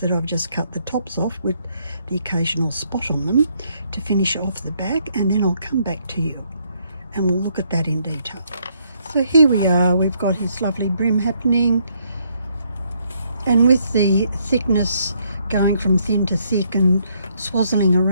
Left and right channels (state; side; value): inverted; both; correlation -0.71